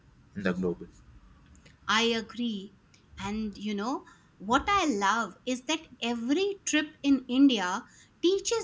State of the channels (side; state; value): both; identical; correlation 1.00